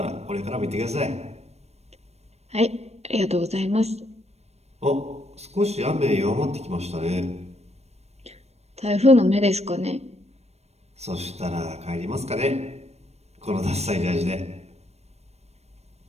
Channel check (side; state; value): left; late; 0.31 ms